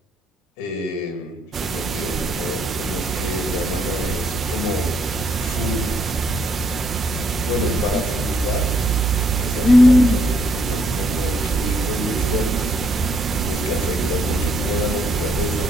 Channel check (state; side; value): normal; both; correlation 0.72